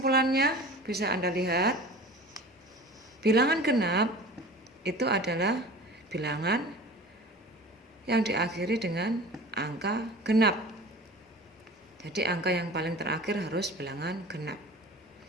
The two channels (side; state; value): both; normal; correlation 0.39